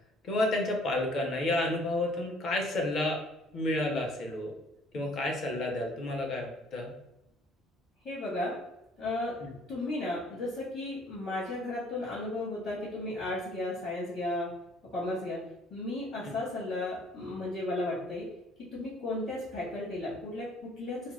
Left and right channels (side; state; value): both; normal; correlation 0.58